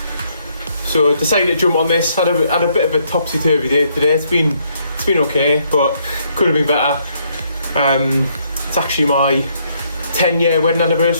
So I decided to jump on this. Had a bit of a topsy-turvy day today. It's been okay, but could have been better. It's actually my 10-year wedding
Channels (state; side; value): inverted; both; correlation -0.71